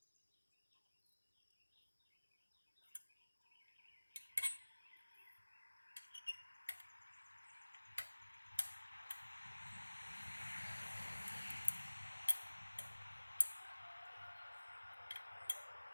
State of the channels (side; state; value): both; inverted; correlation -1.00